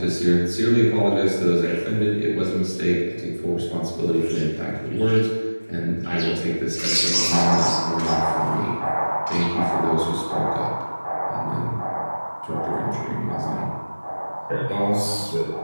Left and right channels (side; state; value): both; inverted; correlation -1.00